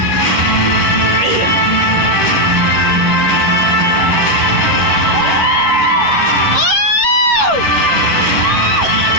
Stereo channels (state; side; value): late; right; 10 ms